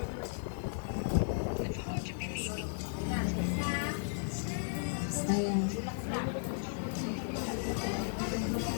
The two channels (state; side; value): silent; right; 54 dB below the other